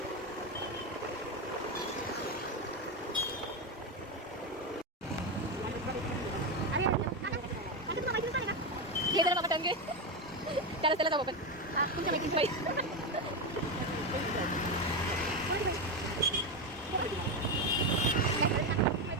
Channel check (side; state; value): both; normal; correlation 0.12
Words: हे जरा बाबा टंगे त्याला जाऊ आपण तुमच्या मैत्रिणी बाई.